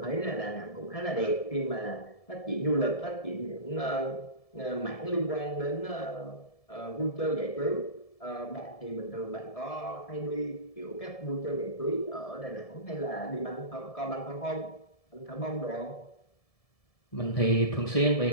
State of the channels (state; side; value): late; right; 1.7 ms